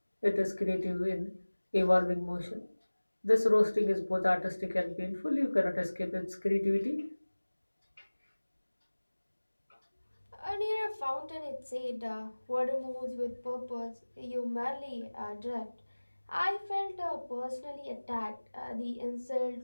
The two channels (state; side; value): inverted; both; correlation -1.00